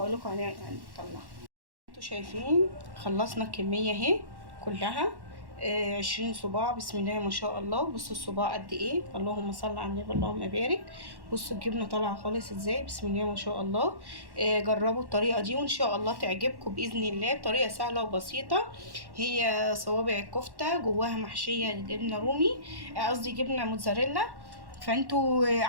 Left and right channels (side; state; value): left; late; 1.1 ms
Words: لكم هنطلعه. انتوا شايفين خلصنا الكميه اهي كلها. 20 صباع. بسم الله ما شاء الله. بصوا الصباع قد ايه، اللهم صل على النبي اللهم بارك. بصوا الجبنه طالعه خالص ازاي، بسم الله ما شاء الله. جربوا الطريقه دي وان شاء الله تعجبكم باذن الله. طريقه سهله وبسيطه. هي صوابع الكفته جواها محشيه جبنه رومي، قصدي جبنه موتزاريلا. فانتوا